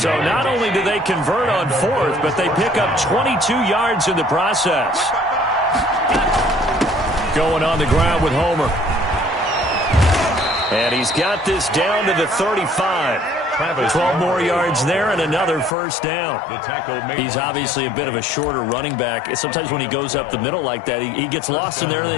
yards. not only do they convert on 4th, but they pick up 22 yards in the process. Going on the ground with Homer. And he's got this down to the 35. 12 more yards there and another 1st down. He's obviously a bit of a shorter running back. Sometimes when he goes up the middle like that, he gets lost in there and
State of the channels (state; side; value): drops out; right; at 15.8 s